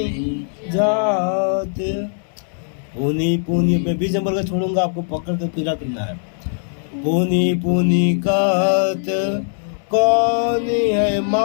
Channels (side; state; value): right; silent; digital silence